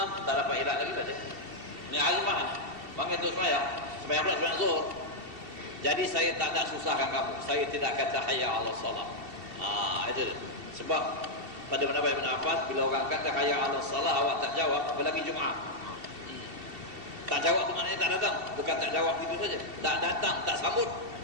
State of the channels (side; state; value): left; late; 2.7 ms